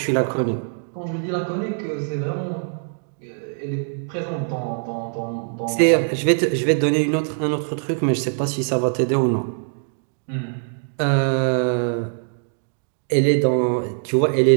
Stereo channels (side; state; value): left; silent; digital silence